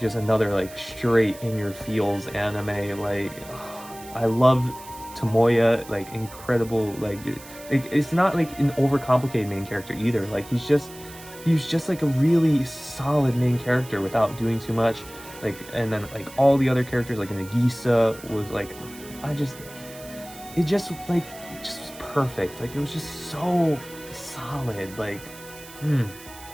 another like straight in your feels anime. Like, I love Tomoya, like incredible. Like, it's not like an overcomplicated main character either. Like, he's just like a really solid main character without doing too much. Like, and then like all the other characters, like Nagisa was like, it just was perfect. Like, it was just so solid. Like,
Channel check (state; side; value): noise; right; hiss, 18 dB below the sound